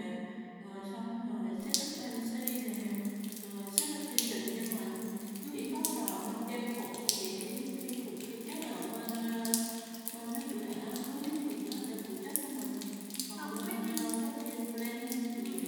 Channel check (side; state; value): both; identical; correlation 1.00